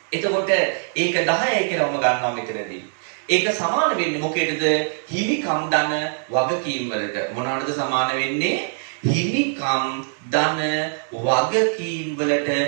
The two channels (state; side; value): silent; left; digital silence